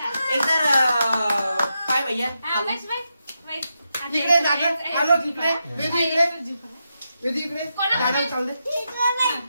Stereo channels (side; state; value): both; inverted; correlation -0.86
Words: काय भैया इकडे दादा आलो इकडे वेदी इकडे दादा चाल दे.